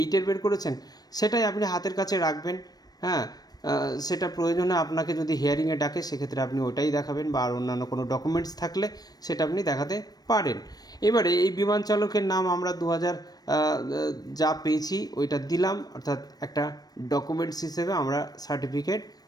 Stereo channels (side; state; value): right; late; 0.19 ms